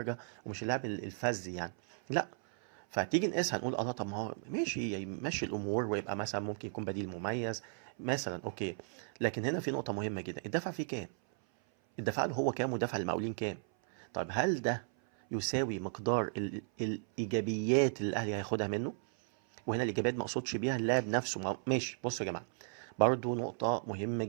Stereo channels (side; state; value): left; silent; 54 dB below the other